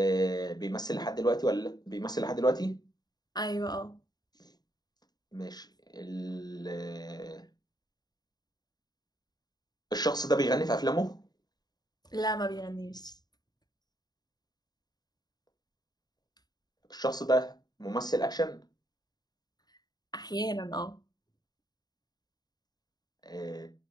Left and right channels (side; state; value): right; late; 0.20 ms